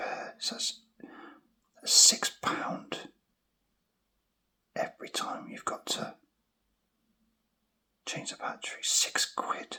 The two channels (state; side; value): identical; both; correlation 1.00